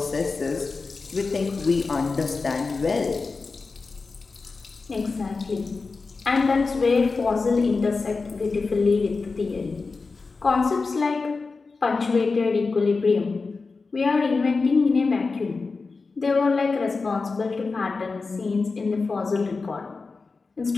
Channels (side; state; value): right; quieter; 4.2 dB